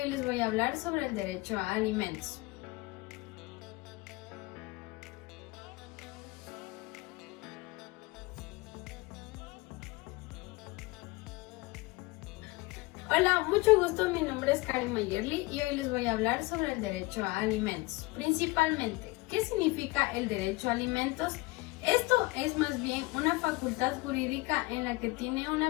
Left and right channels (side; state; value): right; quieter; 22.8 dB